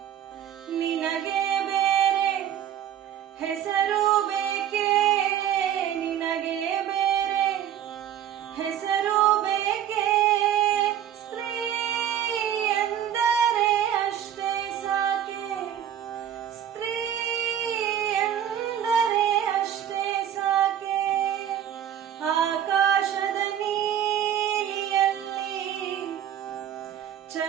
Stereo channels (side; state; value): left; quieter; 10.2 dB